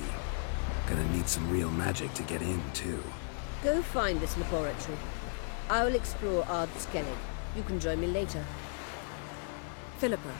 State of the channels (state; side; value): silent; right; 55 dB below the other